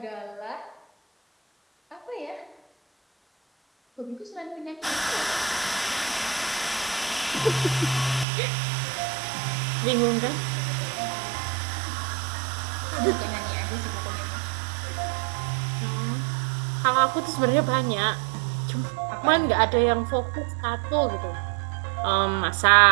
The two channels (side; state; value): left; drops out; at 8.2 s